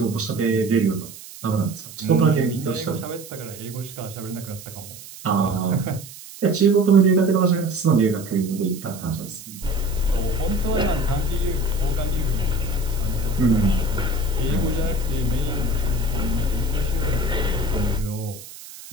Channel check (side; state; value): right; noise; hiss, 16 dB below the sound